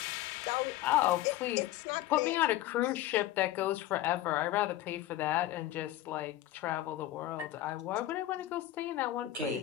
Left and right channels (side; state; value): right; quieter; 14.2 dB